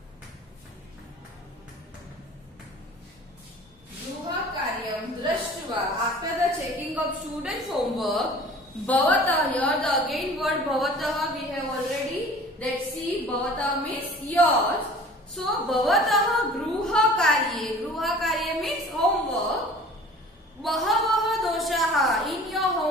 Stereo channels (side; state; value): both; normal; correlation 0.45